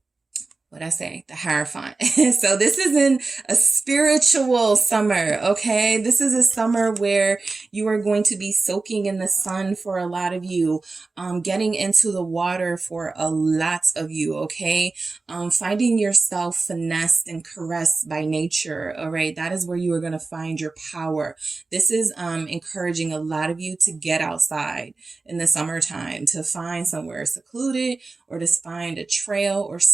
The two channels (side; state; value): left; quieter; 3.7 dB